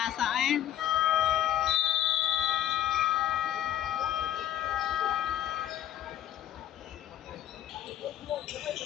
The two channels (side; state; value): right; quieter; 11.5 dB